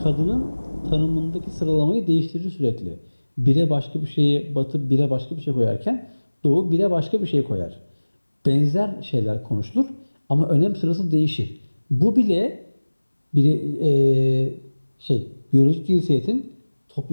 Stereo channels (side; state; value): both; inverted; correlation -1.00